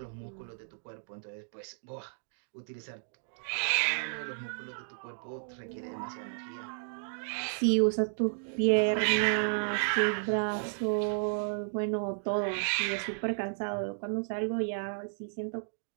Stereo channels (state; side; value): silent; left; digital silence